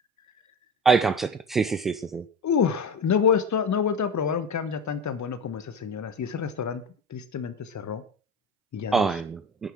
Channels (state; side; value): normal; both; correlation 0.28